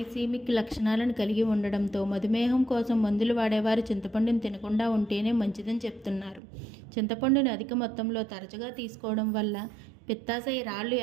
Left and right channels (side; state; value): left; drops out; at 6.4 s